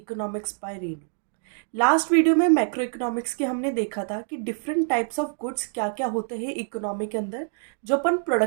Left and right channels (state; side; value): silent; left; 61 dB below the other